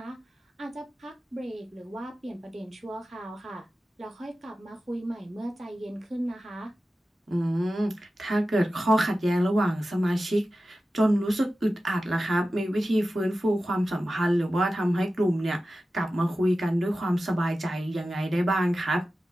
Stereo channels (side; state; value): both; normal; correlation 0.94